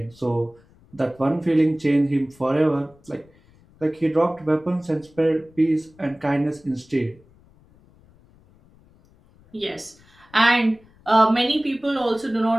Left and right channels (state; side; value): noise; left; rumble, 29 dB below the sound